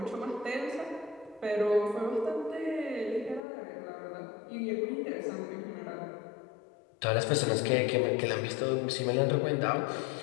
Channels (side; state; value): right; drops out; at 3.4 s